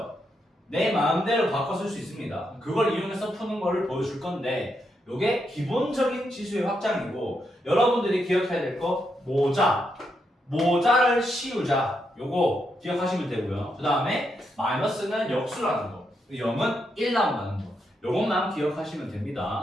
내 마음대로 바꿔 쓸 수 있습니다. 그걸 이용해서 푸는 거를 보여줄 건데 이게 기본적인 지수의 확장이고 여러분들이 기억해야 될 거 모자를 씌우자. 요거 기억하시면 되고요. 그 다음에 마이너스는 역수라는 거, 0은 1 나온다는 거, 요것만 기억하시면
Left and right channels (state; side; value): normal; both; correlation 0.81